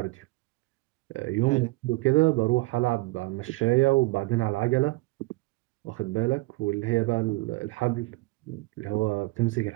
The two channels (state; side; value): quieter; left; 22.6 dB